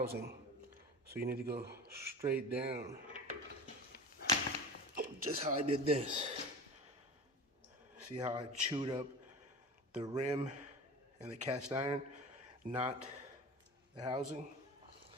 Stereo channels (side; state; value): both; normal; correlation 0.33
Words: so you need to go straight down. Just how I did this. See how I chewed up the rim and the cast iron, not the housing?